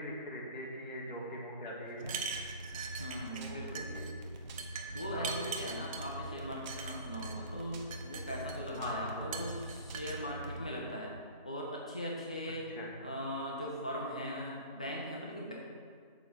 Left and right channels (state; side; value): inverted; both; correlation -0.41